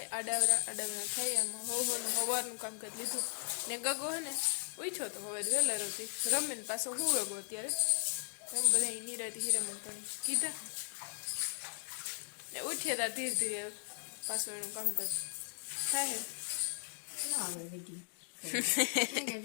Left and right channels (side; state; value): right; silent; digital silence